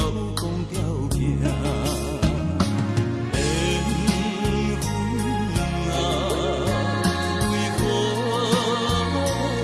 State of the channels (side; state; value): both; identical; correlation 1.00